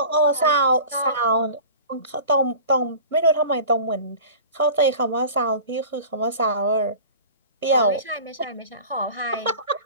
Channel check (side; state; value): both; inverted; correlation -0.40